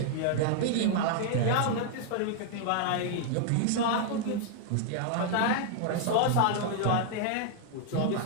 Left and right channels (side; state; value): both; different; correlation 0.00